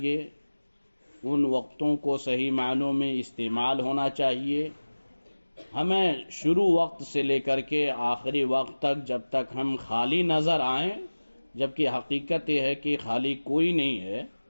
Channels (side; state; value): both; inverted; correlation -1.00